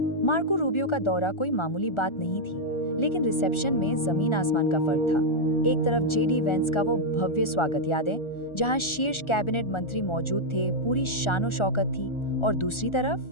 मार्को रूबियो का दौरा कोई मामूली बात नहीं थी, लेकिन रिसेप्शन में जमीन आसमान का फर्क था। एक तरफ जेडी वेंस का वो भव्य स्वागत, यादें, जहां शीर्ष कैबिनेट मंत्री मौजूद थे, पूरी शानो शौकत थी, और दूसरी तरफ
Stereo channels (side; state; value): right; late; 1.4 ms